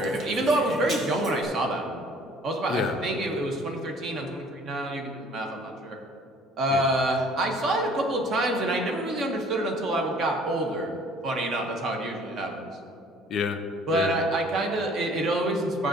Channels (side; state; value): both; normal; correlation 0.54